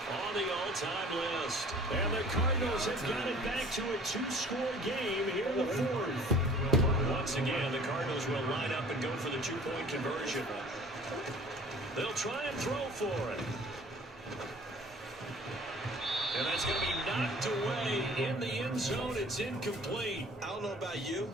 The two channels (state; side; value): normal; both; correlation 0.49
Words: on the all-time list. And the Cardinals have got it back to a 2-score game here in the 4th. Once again, the Cardinals will line up and go for the 2-point conversion. They'll try and throw for it. And that's going to be knocked away in the end zone. It's incomplete. I don't know about you,